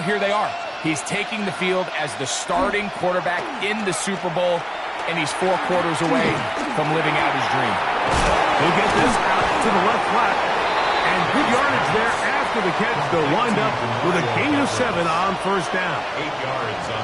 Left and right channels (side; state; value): both; identical; correlation 1.00